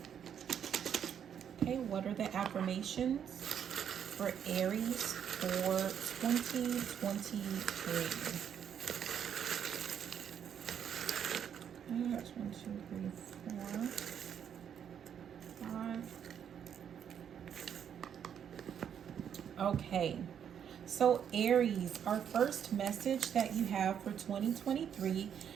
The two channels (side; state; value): left; quieter; 8.5 dB